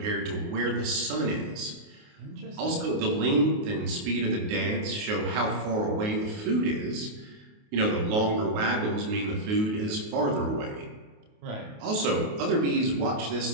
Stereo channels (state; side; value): late; left; 28 ms